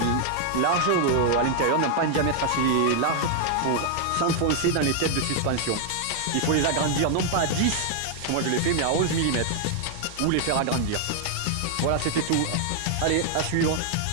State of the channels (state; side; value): different; both; correlation 0.00